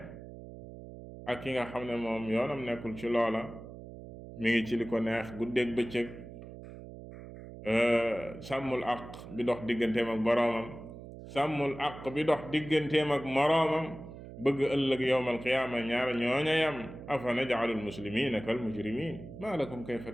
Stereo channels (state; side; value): noise; right; hum, 14 dB below the sound